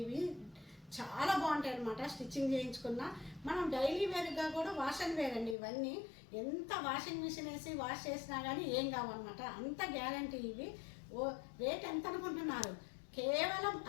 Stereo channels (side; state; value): right; drops out; at 5.6 s